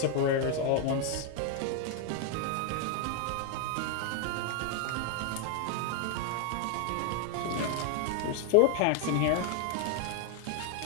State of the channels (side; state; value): both; different; correlation 0.00